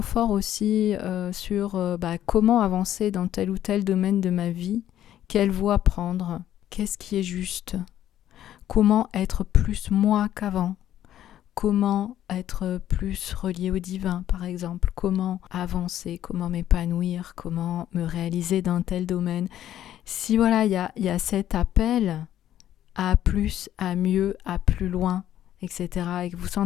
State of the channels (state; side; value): quieter; right; 11.8 dB